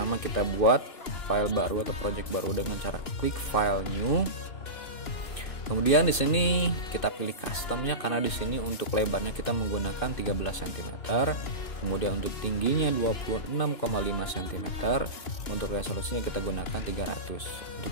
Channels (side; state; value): right; late; 2.6 ms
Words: kita buat file baru atau project baru dengan cara klik file new. Kemudian di sini kita pilih customnya, karena di sini untuk lebarnya kita menggunakan 13 cm. Kemudian untuk tingginya 26,5 cm. Untuk resolusinya kita gunakan 300.